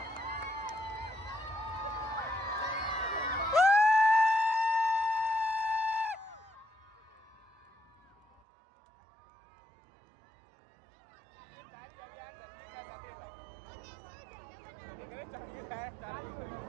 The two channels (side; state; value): left; drops out; at 8.4 s